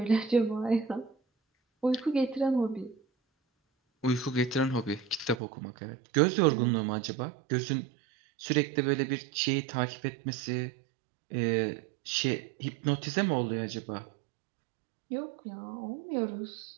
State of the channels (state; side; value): drops out; left; at 5.4 s